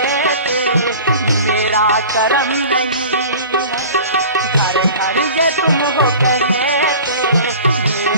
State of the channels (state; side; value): inverted; both; correlation -0.40